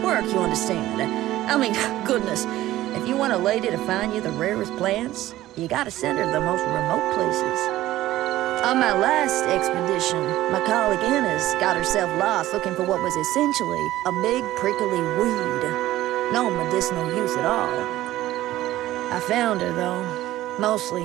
you understand. I mean, goodness, if you want a lady to find you the rarest plants, you gotta send her to the most remote places. On my last expedition, my colleague Inez got herself lost looking for what was essentially a big prickly weed. No medicinal use at all. I found her, though,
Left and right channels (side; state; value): left; quieter; 15.2 dB